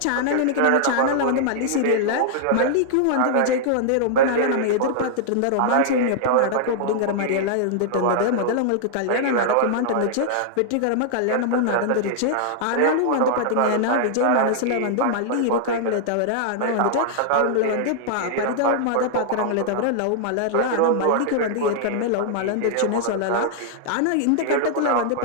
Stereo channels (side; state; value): both; different; correlation -0.01